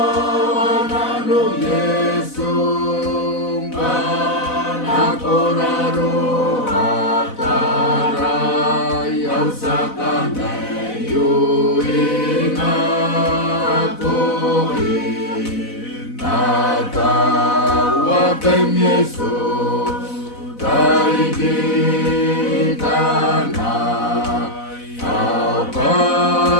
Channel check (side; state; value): right; late; 4.0 ms